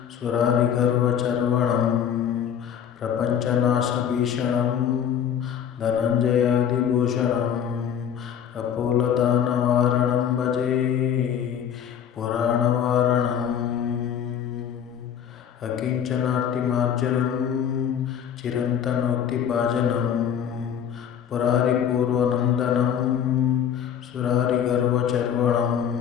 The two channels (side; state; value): right; quieter; 8.7 dB